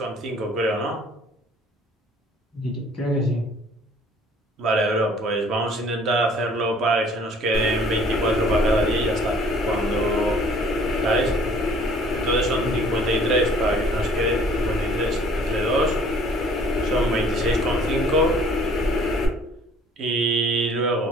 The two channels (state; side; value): normal; both; correlation 0.55